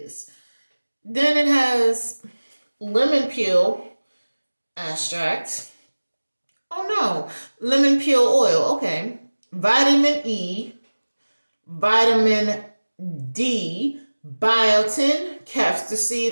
Then it has lemon peel extract. Oh no, lemon peel oil. Okay, vitamin E, vitamin D, biotin, castor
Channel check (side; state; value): both; inverted; correlation -1.00